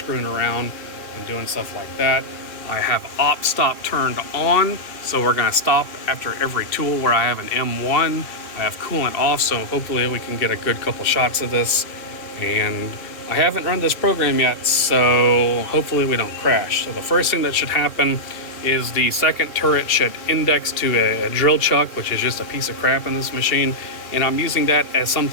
around and doing stuff like that. I have op stop turned on, so we're gonna stop after every tool where I have an M1. I have coolant off, so hopefully we can get a good couple shots of this. And I haven't run this program yet, so hopefully we don't crash. So the first thing that should happen is the second turret should index to a drill chuck, which is just a piece of crap in this machine, and I'm using that as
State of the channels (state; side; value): late; right; 2.7 ms